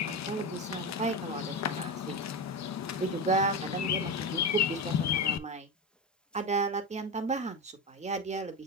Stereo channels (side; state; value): both; normal; correlation 0.18